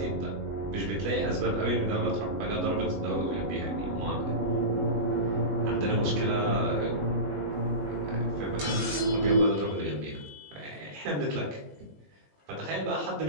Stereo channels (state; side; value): late; left; 20 ms